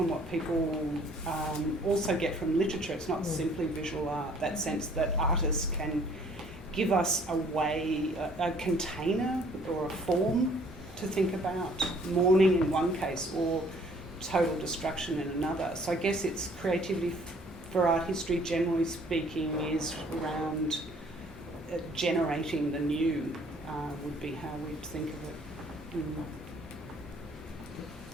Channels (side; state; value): both; normal; correlation 0.58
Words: what people also get from literature. It's not simply visual art, that sense that artists can give us a way, a container or a form to think about mourning in one case or total destruction in another. So I guess it's creativity for art history, generally speaking, is around generating the new, would be how we'd think of it.